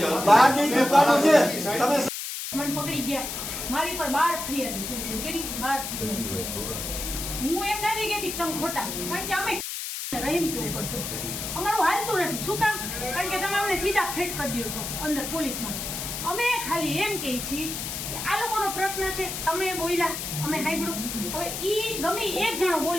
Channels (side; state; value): left; noise; hiss, 5 dB below the sound